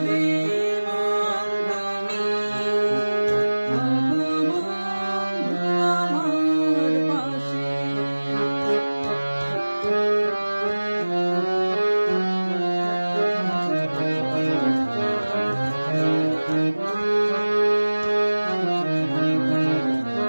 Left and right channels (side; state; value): both; inverted; correlation -1.00